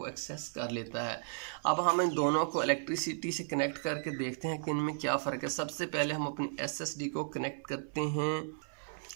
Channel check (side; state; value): left; silent; 55 dB below the other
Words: एक्सेस कर लेता है। अब हम इन दोनों को इलेक्ट्रिसिटी से कनेक्ट करके देखते हैं कि इनमें क्या फ़र्क है। सबसे पहले हम अपनी SSD को कनेक्ट करते हैं।